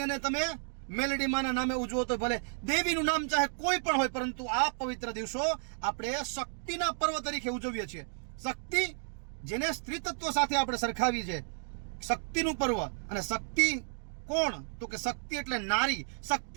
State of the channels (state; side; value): silent; left; 56 dB below the other